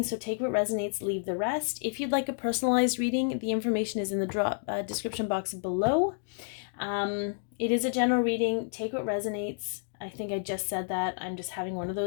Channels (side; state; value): right; silent; digital silence